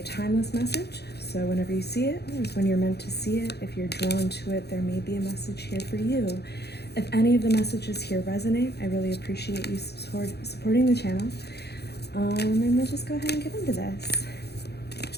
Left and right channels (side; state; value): right; late; 0.48 ms